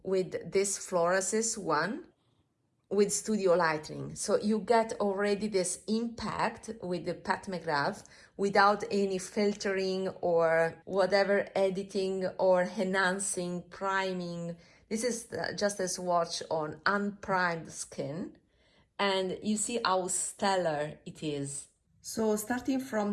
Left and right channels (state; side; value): identical; both; correlation 1.00